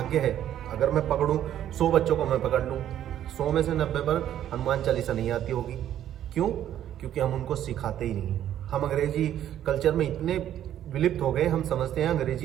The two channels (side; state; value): left; quieter; 11.1 dB